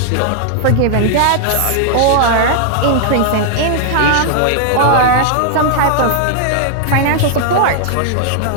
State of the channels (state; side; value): different; both; correlation 0.00